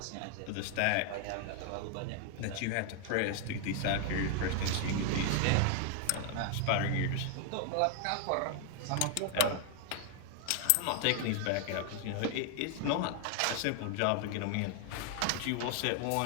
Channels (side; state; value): both; different; correlation 0.00